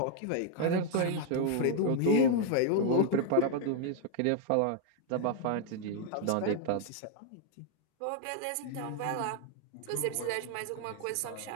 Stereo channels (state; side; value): different; both; correlation 0.00